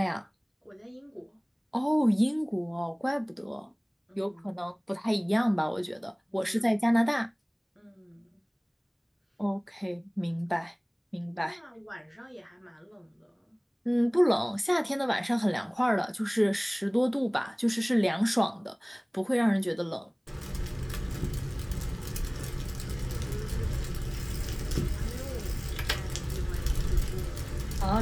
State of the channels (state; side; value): identical; both; correlation 1.00